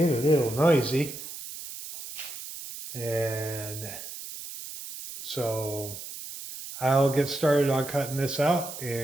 a little noisy. And so I'll get started on cutting this out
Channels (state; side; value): noise; right; hiss, 11 dB below the sound